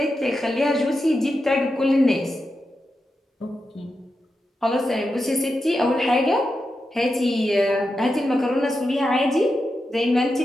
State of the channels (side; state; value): both; normal; correlation 0.88